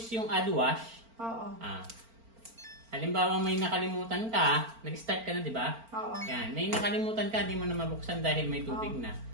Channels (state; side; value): late; left; 4.4 ms